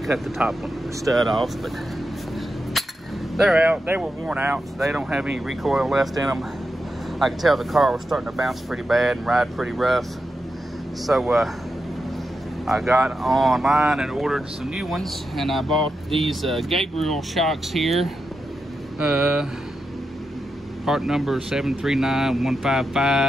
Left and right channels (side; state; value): both; normal; correlation 0.87